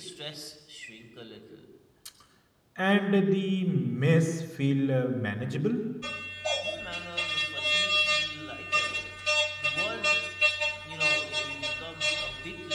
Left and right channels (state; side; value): identical; both; correlation 1.00